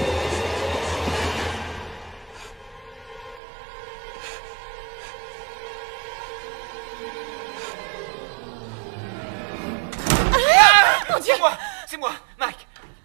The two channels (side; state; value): left; drops out; at 3.4 s